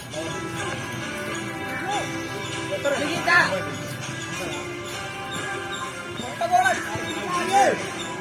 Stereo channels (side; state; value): both; identical; correlation 1.00